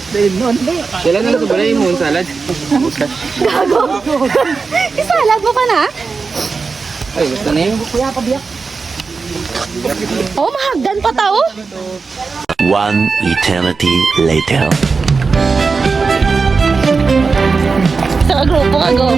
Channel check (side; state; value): left; quieter; 4.6 dB